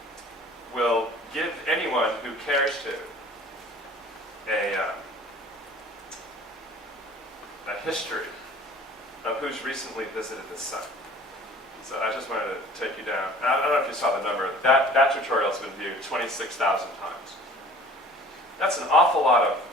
will give anyone who cares to a history of who's recently visited the site. So I just wanted to take you down. And I don't know if you saw the number. That tutorial has been viewed 26,000 times. That's an awful lot of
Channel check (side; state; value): both; normal; correlation 0.48